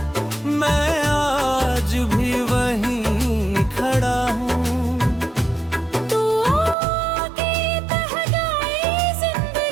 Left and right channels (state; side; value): drops out; left; at 6.8 s